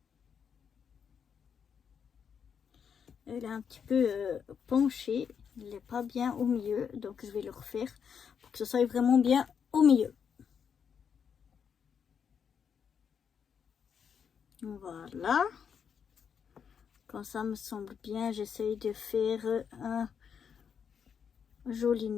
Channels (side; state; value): right; quieter; 7.2 dB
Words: Elle est un petit peu penchée, il n'est pas bien au milieu, donc je vais le refaire pour que ce soit vraiment bien au milieu. Voilà, quand ça me semble bien, j'essaye de faire un joli